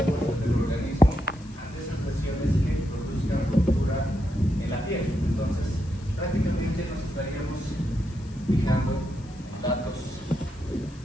del organismo ante esas lesiones que produzcan ruptura en la piel. Entonces, prácticamente nos estaríamos fijando datos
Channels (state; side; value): noise; left; hiss, 25 dB below the sound